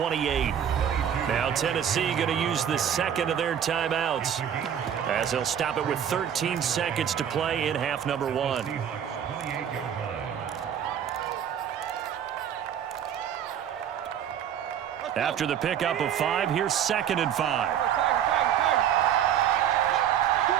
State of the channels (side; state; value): left; quieter; 9.2 dB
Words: Now Tennessee going to use the 2nd of their timeouts as they'll stop it with 13 seconds to play in half number 1. After the pickup of 5, here's 2nd and 5.